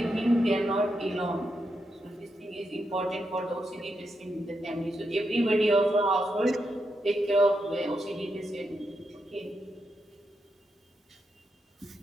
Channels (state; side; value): normal; both; correlation 0.84